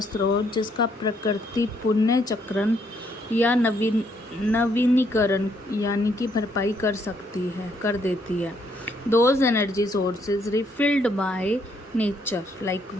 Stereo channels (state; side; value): normal; both; correlation 0.71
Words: स्रोत जिसका प्रकृति पुनर्चक्रण या नवीनीकरण यानी कि भरपाई कर देती है। Those energy sources refilled by nature like